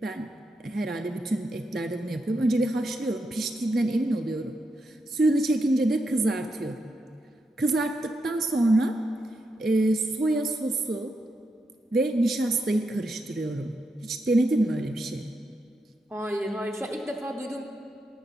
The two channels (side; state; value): both; normal; correlation 0.84